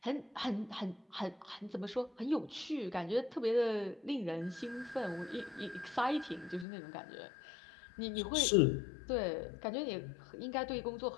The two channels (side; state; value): right; drops out; at 6.7 s